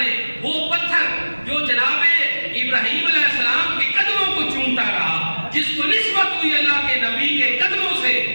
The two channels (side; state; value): both; inverted; correlation -1.00